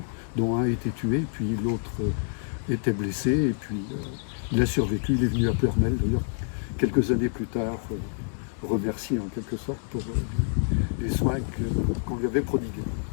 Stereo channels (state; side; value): silent; right; digital silence